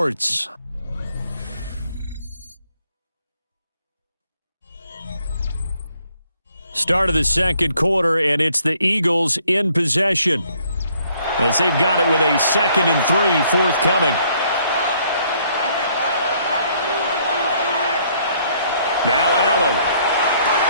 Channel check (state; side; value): inverted; both; correlation -0.65